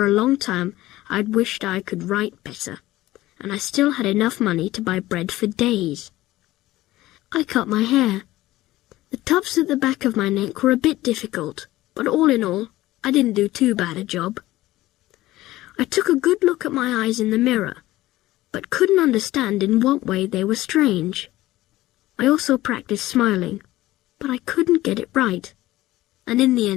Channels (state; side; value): quieter; right; 16.7 dB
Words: a long time I'd wished I could write better, and I still had enough money to buy bread for days. I cut my hair. The tufts at the back of my neck were a bit difficult, but all in all, I didn't do too bad a job. I took a good look at my eyes in the mirror, but couldn't understand in what way they were strange. I also practiced smiling, but I couldn't get it right, and in the